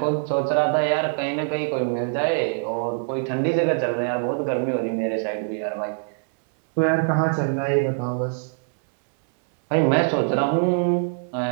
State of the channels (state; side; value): silent; left; digital silence